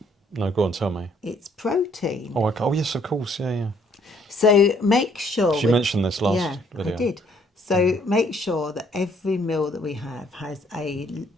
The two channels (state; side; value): normal; both; correlation 0.64